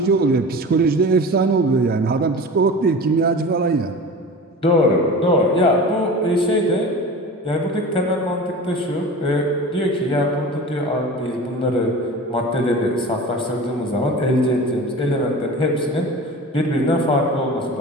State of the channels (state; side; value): normal; both; correlation 0.35